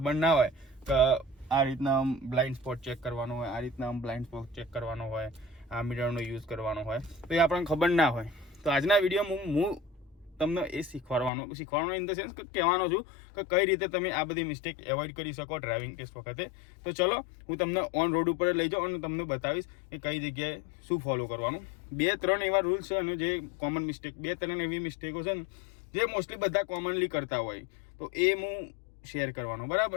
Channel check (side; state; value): right; drops out; at 11.3 s